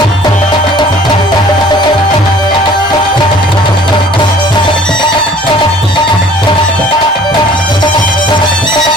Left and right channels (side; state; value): both; normal; correlation 0.52